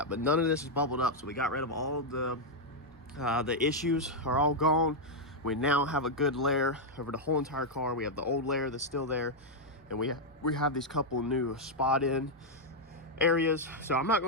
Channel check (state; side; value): normal; both; correlation -0.02